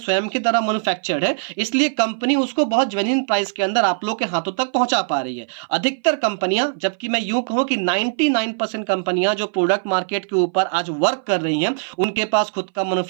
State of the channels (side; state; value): left; silent; 59 dB below the other